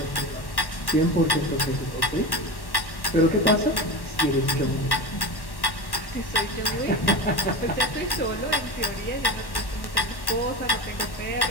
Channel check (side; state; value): right; late; 1.1 ms